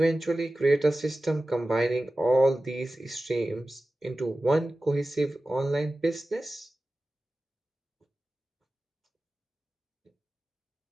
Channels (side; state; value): both; normal; correlation 0.95